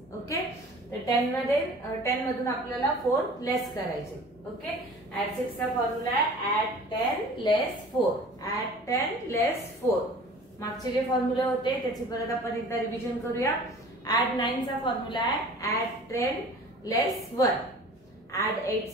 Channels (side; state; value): both; normal; correlation 0.44